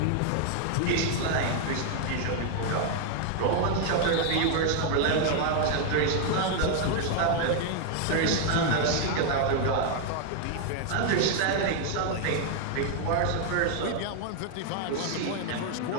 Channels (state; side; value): different; both; correlation 0.00